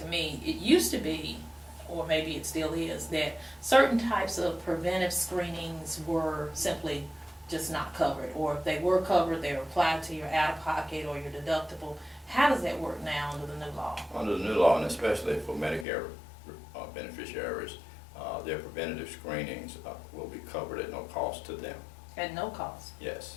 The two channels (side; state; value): right; drops out; at 15.9 s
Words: me. It used to be, or maybe it still is, that certain types of preventive screenings were simply just not covered, or if they were covered, they were applied to your out-of-pocket or your deductible. How does that work now under the new law? Under the new law, and especially for Medicare beneficiaries, their preventative screenings will be covered at no cost to them. At no cost?